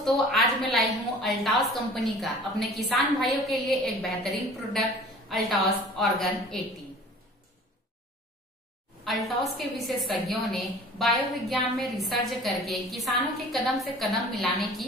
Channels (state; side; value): normal; both; correlation 0.46